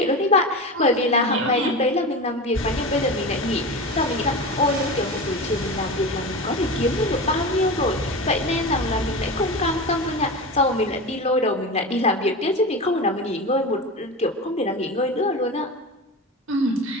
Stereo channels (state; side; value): normal; both; correlation 0.26